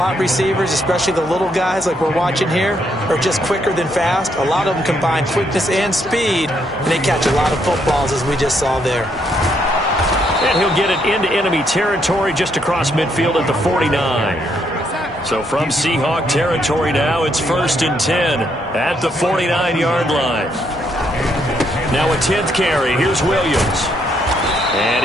receivers, especially the little guys like we're watching here, are just quicker than fast. A lot of them combine quickness and speed, and they catch a lot of footballs, as we just saw there. And he'll get it into enemy territory just across midfield at the 49. So from Seahawk territory now, it's 1st and 10 at the 49-yard line. Now a 10th carry. Here's Williams. And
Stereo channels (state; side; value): normal; both; correlation 0.74